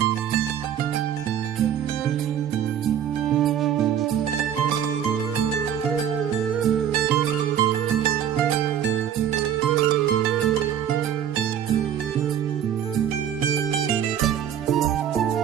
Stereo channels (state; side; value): quieter; left; 9.6 dB